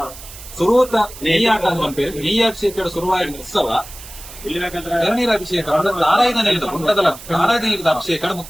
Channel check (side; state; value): right; noise; hiss, 16 dB below the sound